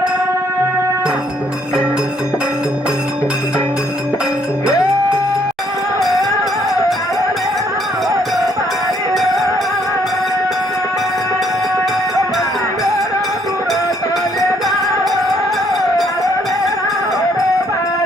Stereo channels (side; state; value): both; normal; correlation 0.67